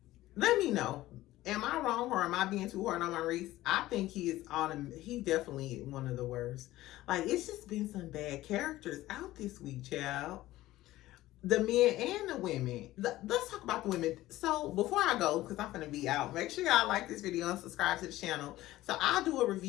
Let me know. Am I wrong, or am I being too hard on Maurice? I think he's definitely one of the worst. Like, it's just been some bad characters out this week, child. The men and the women. Let's talk about the women. So before I go, because I'm gonna be out, make sure y'all like this video and subscribe to the channel. So I'll do a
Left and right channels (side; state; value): right; quieter; 16.2 dB